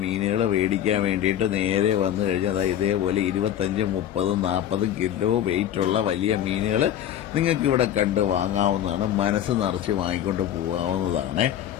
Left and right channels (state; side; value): quieter; right; 10.7 dB